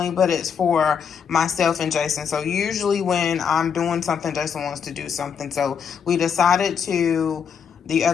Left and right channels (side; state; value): right; quieter; 7.1 dB